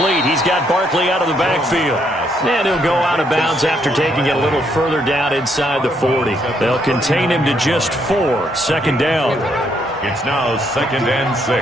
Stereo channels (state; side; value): normal; both; correlation 0.73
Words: He's got Barkley out of the backfield. And he'll go out of bounds after taking it a little further down inside the 40. They'll contain him to just 4. 2nd down. It's now 2nd and